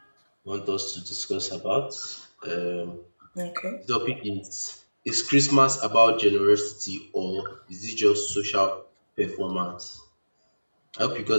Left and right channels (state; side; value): inverted; both; correlation -1.00